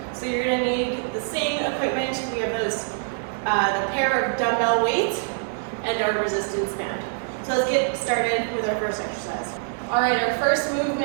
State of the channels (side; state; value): left; silent; digital silence